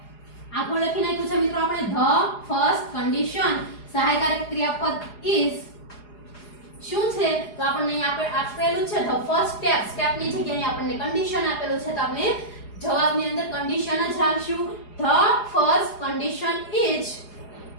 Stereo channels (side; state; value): right; late; 4.8 ms